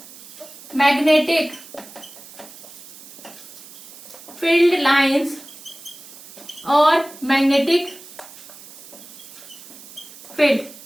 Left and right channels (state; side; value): noise; right; hiss, 17 dB below the sound